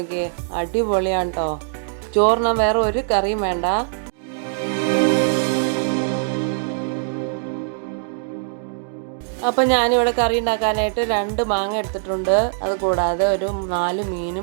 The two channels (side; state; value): left; silent; digital silence